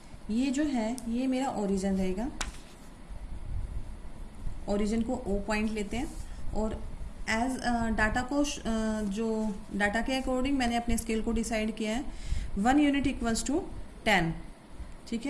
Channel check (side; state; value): both; identical; correlation 1.00